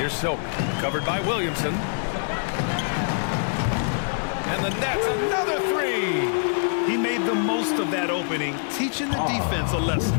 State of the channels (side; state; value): right; silent; 62 dB below the other